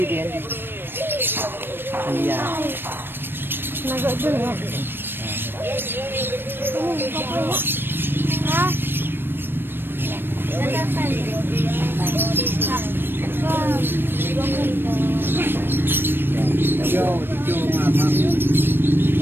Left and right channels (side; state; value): left; late; 0.099 ms